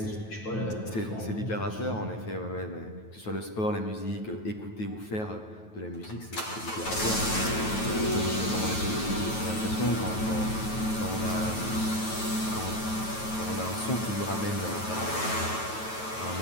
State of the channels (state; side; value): late; right; 9.2 ms